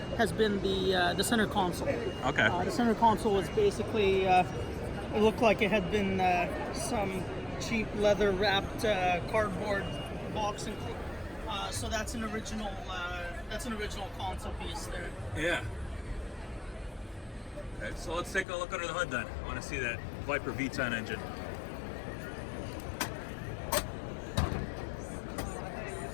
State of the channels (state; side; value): drops out; right; at 18.4 s